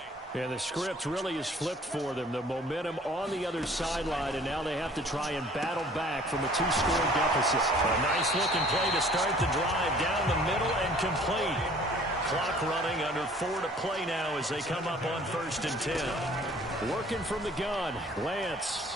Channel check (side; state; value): both; normal; correlation 0.53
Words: And the script really is flipped for them. The momentum on the other sideline, and now they have to try and battle back from a 2-score deficit. A nice-looking play to start the drive down the middle and complete. Clock running, under 4 to play now as they come up on 1st and 10. Working from the gun, Lance.